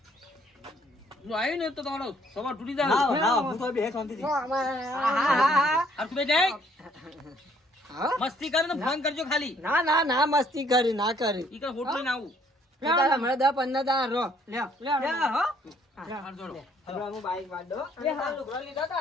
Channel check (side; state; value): both; normal; correlation 0.64